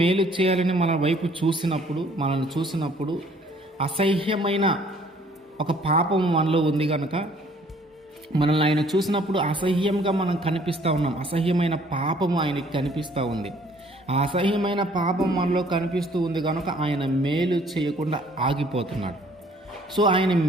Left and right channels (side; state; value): both; normal; correlation 0.59